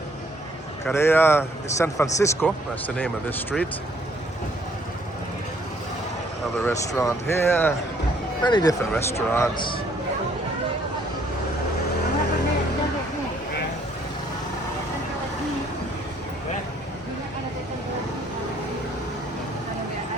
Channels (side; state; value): both; normal; correlation 0.64